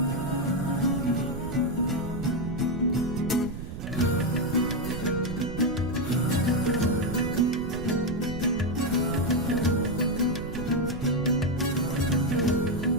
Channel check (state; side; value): noise; right; rumble, 9 dB below the sound